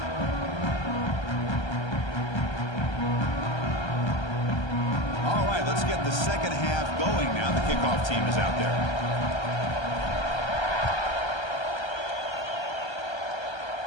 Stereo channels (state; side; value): late; right; 1.3 ms